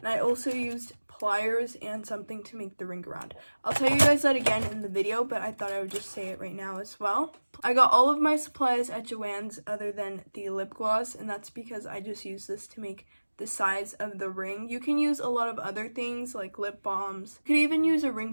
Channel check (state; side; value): inverted; both; correlation -1.00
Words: I also used pliers and something to make the ring around. I'll tell you guys that again in the video, but I thought I would just say it right now as well. I got all of my supplies at Joann's other than the lip gloss, and that's because I just use this to make the size of the ring. You can use a lot of other things like lip balms. You could even use a